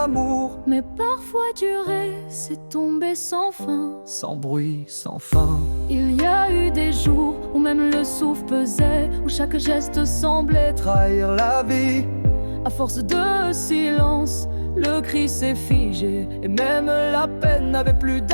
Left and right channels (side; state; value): both; inverted; correlation -1.00